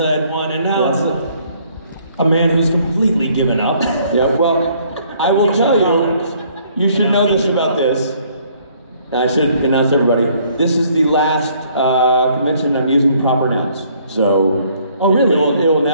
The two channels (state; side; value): inverted; both; correlation -0.63